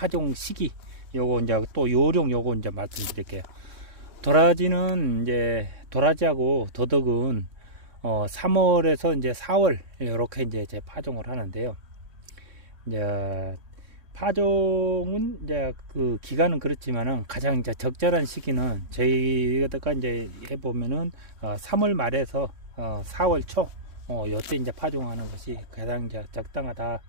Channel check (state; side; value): late; left; 3.1 ms